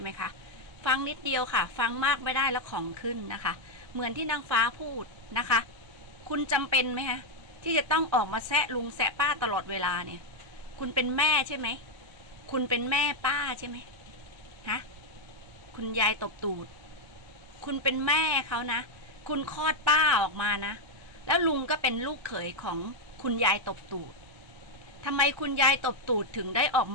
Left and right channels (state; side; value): late; left; 1.3 ms